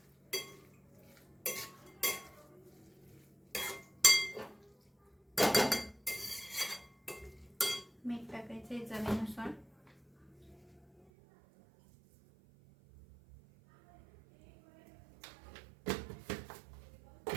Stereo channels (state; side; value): drops out; left; at 11.0 s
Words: मीठ टाकायचंय चवीनुसार।